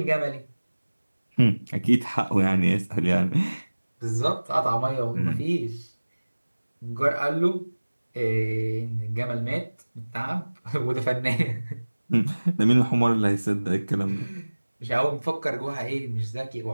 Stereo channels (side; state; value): both; inverted; correlation -1.00